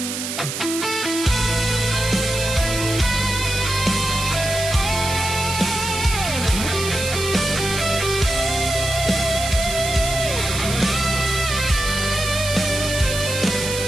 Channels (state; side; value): noise; right; hiss, 5 dB below the sound